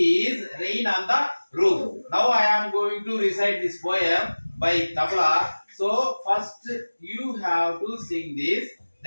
Rain on the Roof. Now I am going to recite this poem by tabla. So first you have to sing this,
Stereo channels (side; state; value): both; inverted; correlation -1.00